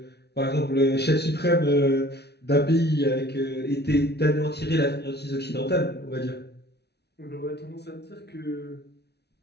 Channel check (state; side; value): late; right; 0.49 ms